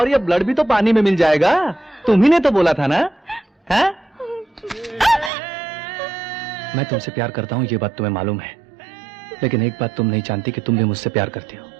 ये ब्लड भी तो पानी में मिल जाएगा। तुम ही ने तो बोला था ना, है? मैं तुमसे प्यार करता हूं, ये बात तुम्हें मालूम है। लेकिन एक बात तुम नहीं जानती कि तुम भी मुझसे प्यार करती हो।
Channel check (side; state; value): left; drops out; at 5.3 s